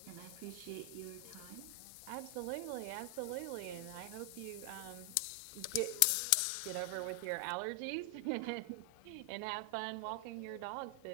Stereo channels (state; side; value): different; both; correlation 0.00